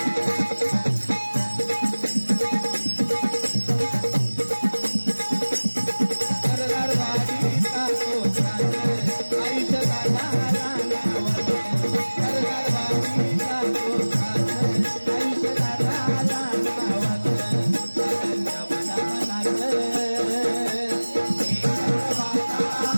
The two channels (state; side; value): inverted; both; correlation -1.00